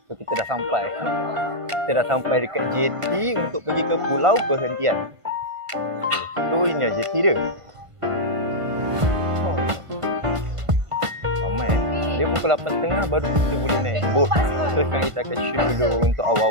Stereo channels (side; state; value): left; late; 1.5 ms